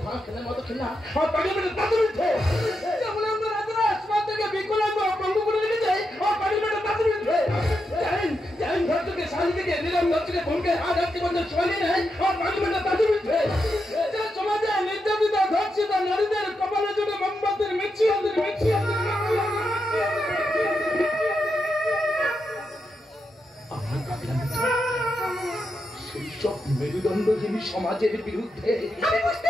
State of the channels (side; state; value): both; normal; correlation 0.85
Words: ঘোড়া খেলার মতো খেলা আমার পার্লামেন্টের তাদের উঠে যেমন আমরা রাজারা আসমান থেকে বিকলাঙ্গ ভঙ্গ করে রেখে যাই আমার পার্লামেন্টের তাদের উঠে জাইন ঘর থেকে শালি থেকে নিলাম ঘর থেকে ভঙ্গে হাত হাতকে বন্ধ চলে নেয় আমার পার্লামেন্টের তাদের উঠে যা সমাজে নির্যাতিতা ধর্ষিতা নারীদের কপালের জন্য মোমবাতির মিছিয়াদের এইসব মেরুদণ্ডহীন সমাজের বিরুদ্ধে। আমি বুঝতে